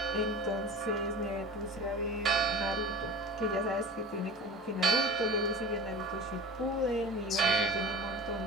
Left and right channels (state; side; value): normal; both; correlation 0.35